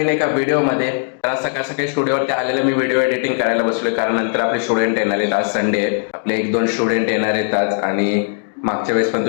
एका व्हिडिओमध्ये. तर आज सकाळ सकाळी स्टुडिओवरती आलेलं मी व्हिडिओ एडिटिंग करायला बसलोय, कारण नंतर आपले स्टुडंट येणार आहेत. आज संडे आहे, आपले 1-2 स्टुडंट येणार आहेत आज. आणि मागच्या वेळेस पण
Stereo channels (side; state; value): right; silent; 67 dB below the other